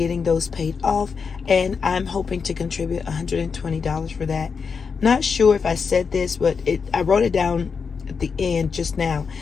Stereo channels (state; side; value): quieter; right; 5.6 dB